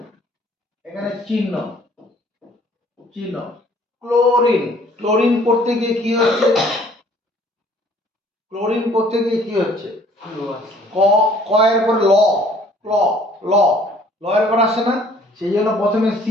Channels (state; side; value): normal; both; correlation 0.57